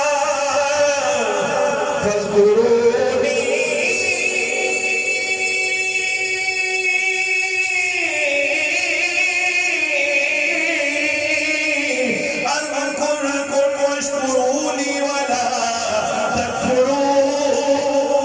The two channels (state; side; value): identical; both; correlation 1.00